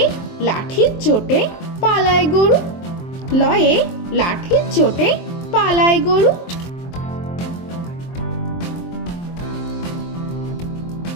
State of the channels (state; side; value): late; right; 23 ms